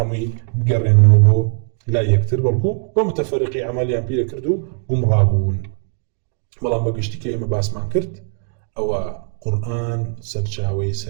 بقرن بو لا يكتر بلكو ومتفرقي عمليا بيه كردو قمرابون بلان بقشتي كيما باسمان كرت أو قرآن سرچاوي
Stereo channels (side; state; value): left; silent; 61 dB below the other